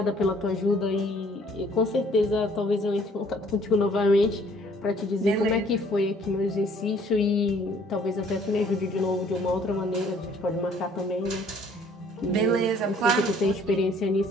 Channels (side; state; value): both; normal; correlation 0.59